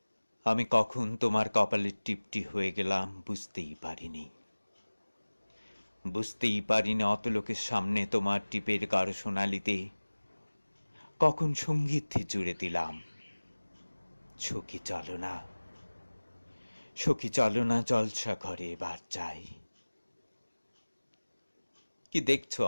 আমি কখন তোমার কপালের টিপটি হয়ে গেলাম বুঝতেই পারিনি। অত লোকের সামনে তোমার টিপের গাঢ় সোনালিতে কখন সঙ্গীত জুড়ে দিলাম। সখী চলো না জলসা ঘরে এবার যাই। কি দেখছো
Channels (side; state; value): both; inverted; correlation -1.00